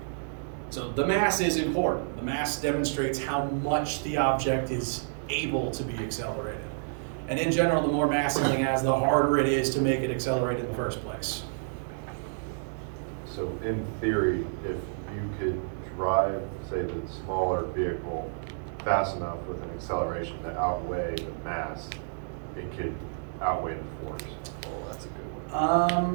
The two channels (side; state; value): left; silent; digital silence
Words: So the mass is important. The mass demonstrates how much the object is able to be accelerated. And in general, the more mass something has, the harder it is to make it accelerate in the first place. So in theory, if you could drive, say, the smaller vehicle fast enough with an acceleration to outweigh the mass, it could outweigh the force. Oh, that's a good